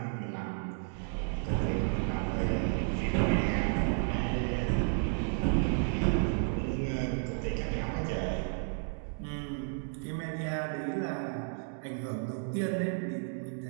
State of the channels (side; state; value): left; silent; 56 dB below the other